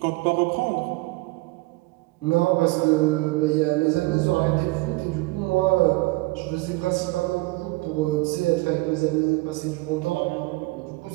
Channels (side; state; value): left; quieter; 22.8 dB